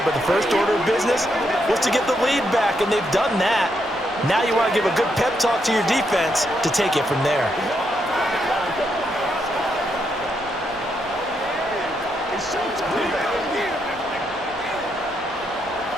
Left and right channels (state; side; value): normal; both; correlation 0.79